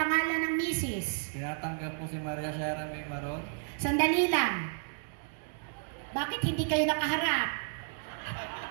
ng misis. Tinatanggap po si Maria Sierra May Maron. Sandali lang. Bakit hindi kayo nakaharap?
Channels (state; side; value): silent; left; digital silence